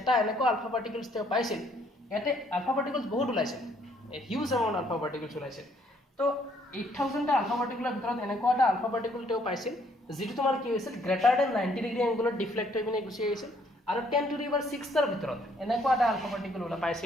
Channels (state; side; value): normal; both; correlation 0.66